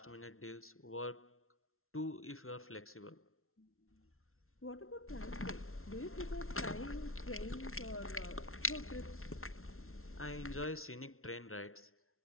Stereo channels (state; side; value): late; right; 0.62 ms